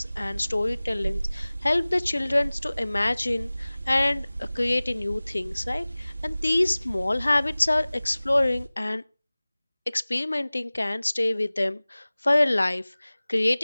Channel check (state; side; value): inverted; both; correlation -0.99